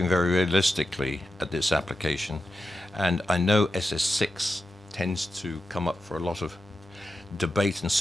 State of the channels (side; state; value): both; normal; correlation 0.90